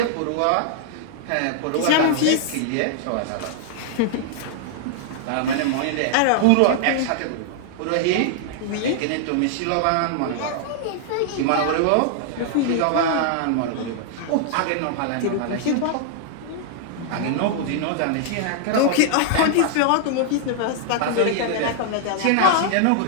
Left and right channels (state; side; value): different; both; correlation -0.01